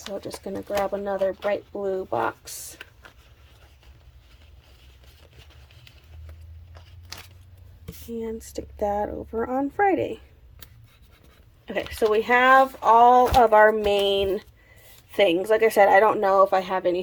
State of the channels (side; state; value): both; identical; correlation 1.00